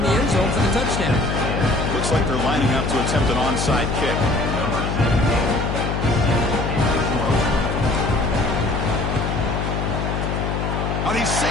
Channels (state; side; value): noise; left; hum, 1 dB below the sound